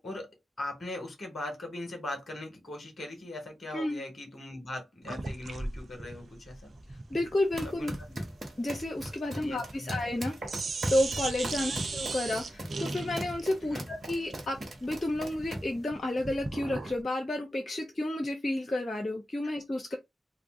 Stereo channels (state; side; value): normal; both; correlation 0.90